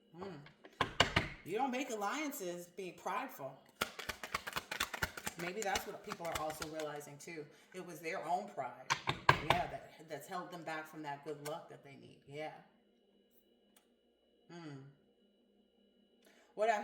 You don't make alliances being prideful. Maybe that's what people are also realizing too. It was their own pride. Yeah, that's held them back from that good luck that they need. Yeah. What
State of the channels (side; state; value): both; identical; correlation 1.00